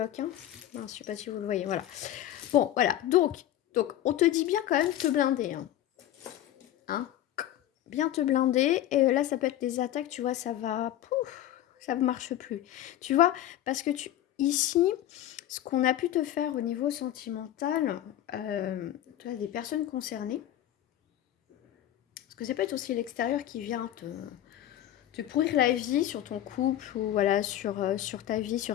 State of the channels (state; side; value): quieter; right; 12.5 dB